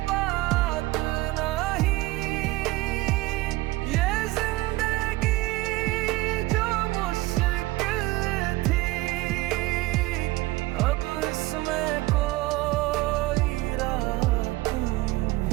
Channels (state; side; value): quieter; left; 19.4 dB